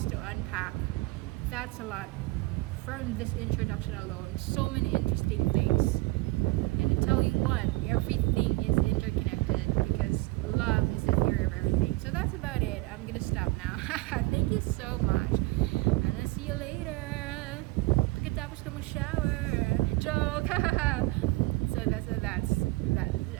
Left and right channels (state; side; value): quieter; left; 21.7 dB